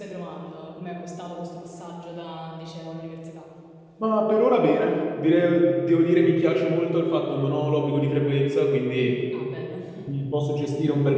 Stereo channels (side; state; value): both; identical; correlation 1.00